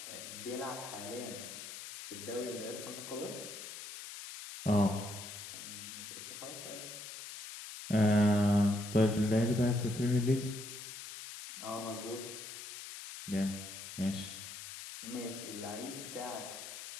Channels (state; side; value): noise; left; hiss, 10 dB below the sound